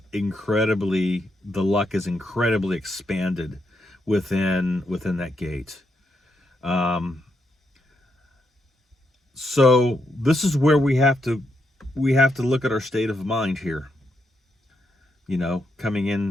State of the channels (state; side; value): normal; both; correlation 0.80